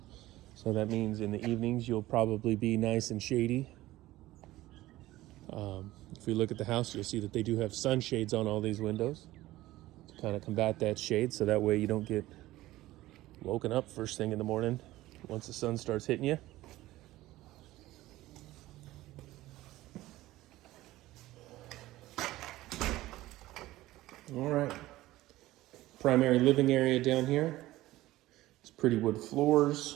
So that means in the evenings you'll probably be nice and shady. If we look at the house, you'll see that they do have sunshades on all these windows to kind of combat that shade, so that way you don't get woken up first thing in the morning once the sun starts hitting you. All right, primary living area down here. It's pretty wood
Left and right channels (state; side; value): quieter; left; 16.8 dB